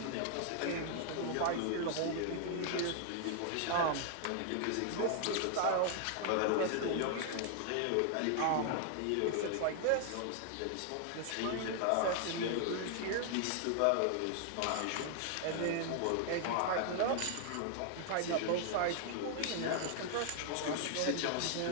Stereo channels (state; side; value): different; both; correlation 0.00